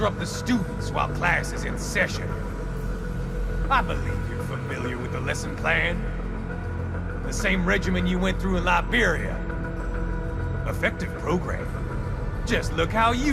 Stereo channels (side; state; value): both; identical; correlation 1.00